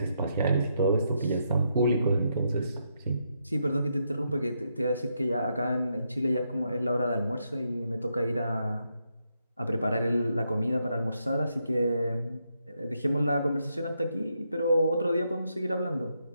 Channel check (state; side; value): inverted; both; correlation -0.80